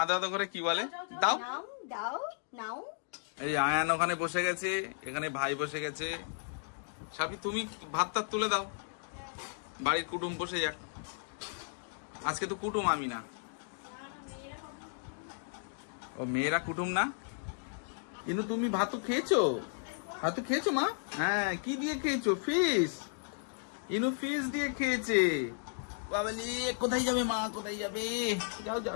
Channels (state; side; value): silent; right; digital silence